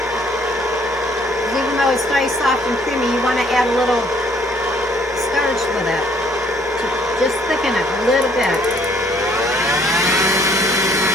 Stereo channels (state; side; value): normal; both; correlation 0.62